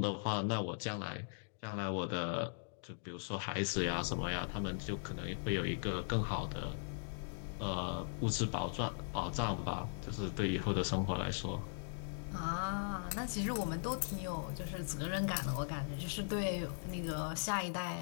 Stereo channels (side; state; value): right; silent; digital silence